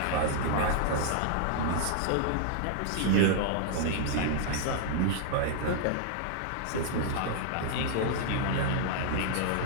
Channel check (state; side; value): different; both; correlation -0.01